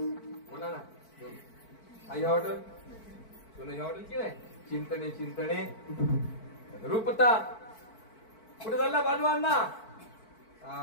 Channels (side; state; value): right; late; 4.5 ms